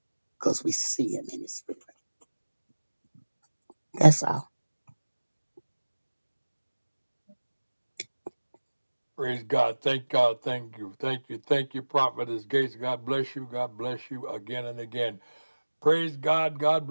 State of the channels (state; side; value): inverted; both; correlation -1.00